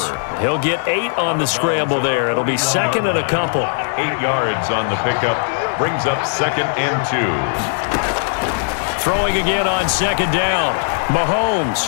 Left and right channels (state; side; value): silent; right; digital silence